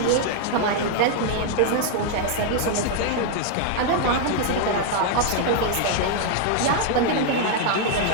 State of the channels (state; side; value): different; both; correlation 0.00